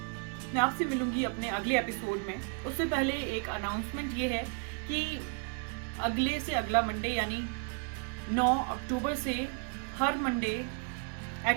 मैं आपसे मिलूंगी अपने अगले एपिसोड में। उससे पहले एक अनाउंसमेंट ये है कि अगले से अगला मंडे यानी 9 अक्टूबर से हर मंडे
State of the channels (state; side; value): quieter; left; 38.2 dB